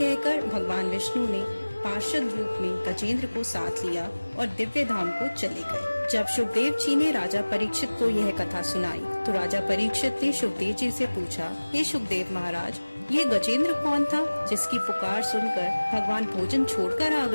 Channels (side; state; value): both; inverted; correlation -1.00